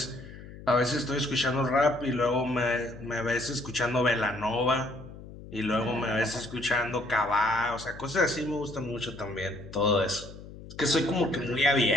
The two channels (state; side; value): noise; left; hum, 15 dB below the sound